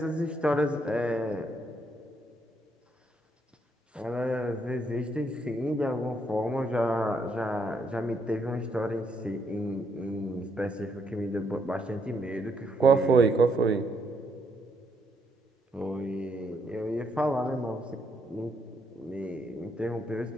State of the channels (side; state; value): both; normal; correlation 0.74